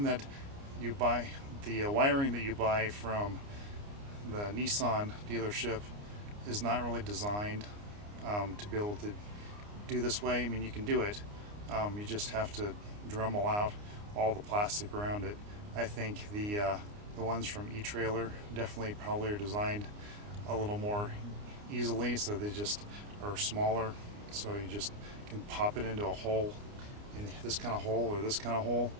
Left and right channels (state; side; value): late; left; 29 ms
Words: that you buy, the wiring that you buy from the Nissan dealership is not really designed to be able to do this way. I mean, you can do it, you just have to Dremel out all the plastic around it. I think the ones from E-trailer definitely probably are designed a little more easily, so they just are smaller, so you just can pop it into a hole, in this kind of hole or this kind of hole.